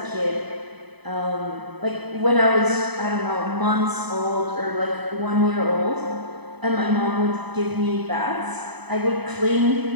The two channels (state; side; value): late; left; 0.99 ms